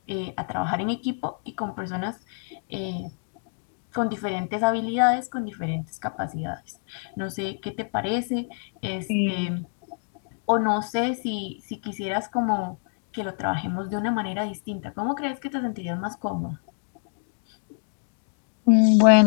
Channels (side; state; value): right; silent; 60 dB below the other